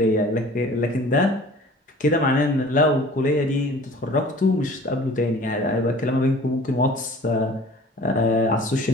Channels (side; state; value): both; normal; correlation 0.46